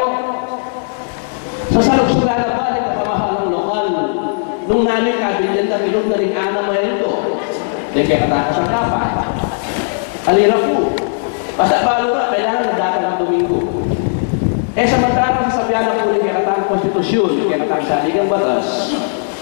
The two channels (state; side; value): silent; right; 69 dB below the other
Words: sa saluksugan na ba ng kapamahalang lokal, nung nanay kabilyan na ilog na rin ana mo ito, yung kaya katakas ang kapa, alira po, basta balura, kailangan na datang ang Domingo. Eh samantarang sasabihan na po ng kaya katang konstitusyon, kaya katang saligang batas,